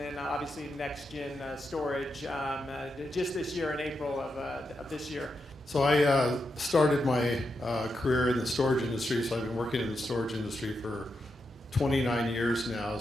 obviously NexGen storage just this year in April of this year. So I started my career in the storage industry, so I've been working in the storage industry for 29 years now,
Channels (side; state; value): both; normal; correlation 0.85